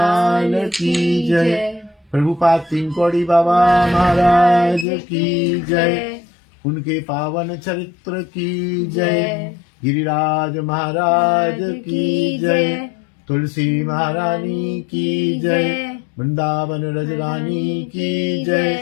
की जय। प्रभुपाद तीन कौड़ी बाबा महाराज की जय। उनके पावन चरित्र की जय। गिरिराज महाराज की जय। तुलसी महारानी की जय। वृंदावन रजरानी की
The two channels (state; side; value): drops out; right; at 4.9 s